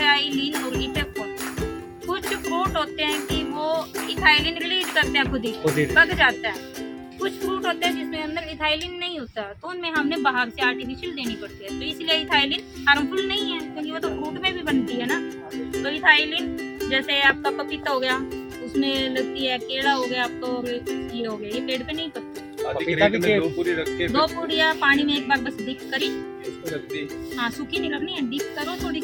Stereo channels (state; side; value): identical; both; correlation 1.00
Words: और इथेफोन। कुछ फ्रूट होते हैं कि वो इथाइलिन रिलीज करते हैं खुद ही पक जाता है। कुछ फ्रूट होते हैं जिसमें अंदर इथाइलिन नहीं होता, तो उनमें हमने बाहर से आर्टिफिशियल देनी पड़ती है, तो इसलिए इथाइलिन हार्मफुल नहीं है क्योंकि वो तो फ्रूट में भी बनती है ना। तो इथाइलिन जैसे आपका पपीता हो गया, उसमें लगती है, केला हो गया आपका, और ये हो गया, ये पेड़ पे नहीं पकती। पपीता भी 2 पूरी रख के 2 पूड़ियाँ पानी में एक बार बस डिप करी, उसको रख दी, हाँ सूखी नहीं रखनी है, डिप करो थोड़ी